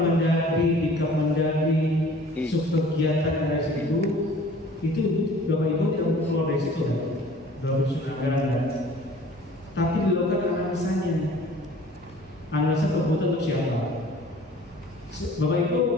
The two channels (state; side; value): normal; both; correlation 0.49